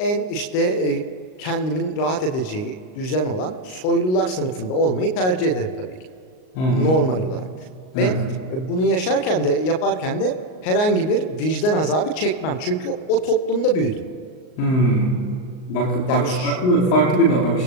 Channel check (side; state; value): right; late; 38 ms